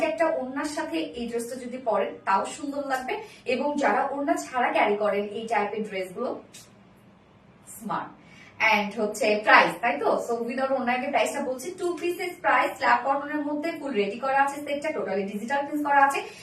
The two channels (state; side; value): identical; both; correlation 1.00